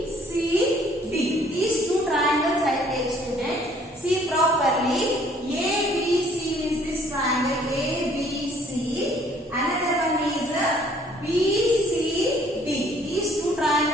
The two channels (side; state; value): both; normal; correlation 0.60